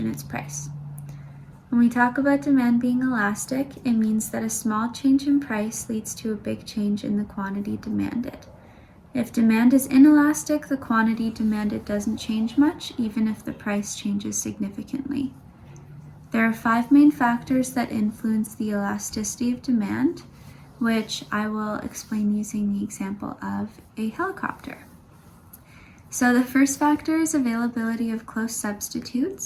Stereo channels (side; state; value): both; identical; correlation 1.00